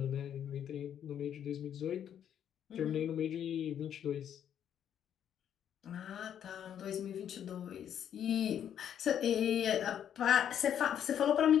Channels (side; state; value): right; quieter; 9.5 dB